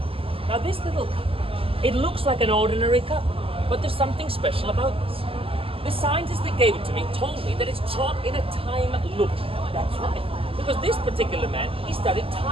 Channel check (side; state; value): left; late; 0.27 ms